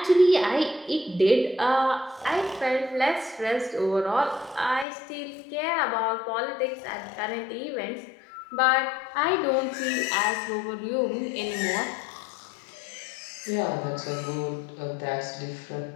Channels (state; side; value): drops out; right; at 4.9 s